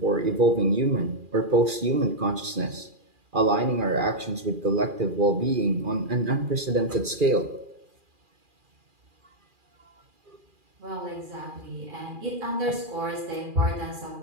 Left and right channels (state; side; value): late; left; 2.4 ms